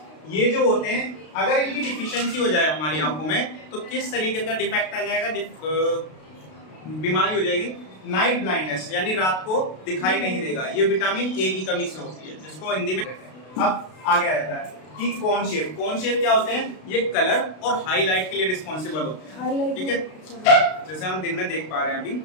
ये जो होते हैं अगर इनकी डिफिशियंसी हो जाए हमारी आंखों में तो किस तरीके का डिफेक्ट आ जाएगा, बीमारी हो जाएगी नाइट ब्लाइंडनेस, यानी रात को दिखाई नहीं देगा। ये विटामिन ए की कमी से होती है, जिसको हिंदी में अब आगे आता है कि कोन शेप। कोन शेप क्या होते हैं? ये कलर और हाईलाइट के लिए रिस्पॉन्सिबल होते हैं। ठीक है, जैसे हम दिन में देख पा रहे हैं अभी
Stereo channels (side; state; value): right; late; 32 ms